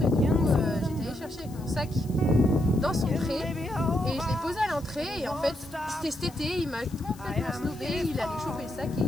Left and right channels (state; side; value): noise; left; hiss, 23 dB below the sound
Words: et du coup j'étais allée chercher avec mon sac dans son pré et je l'ai posé à l'entrée et en fait c'était cet été, il m'a complètement snobé, il allait choper le sac et il